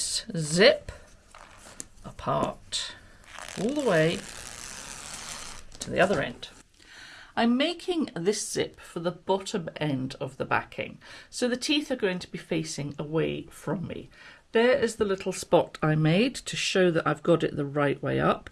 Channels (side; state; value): both; identical; correlation 1.00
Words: zip apart all the way to the other end. I'm making this zip for the bottom end of the backing, so the teeth are going to be facing away from me. There is the little spot I made to show that I've got it the right way up,